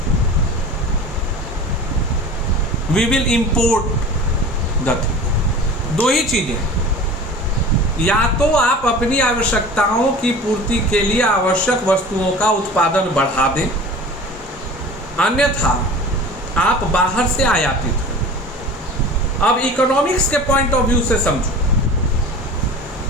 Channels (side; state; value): both; normal; correlation 0.38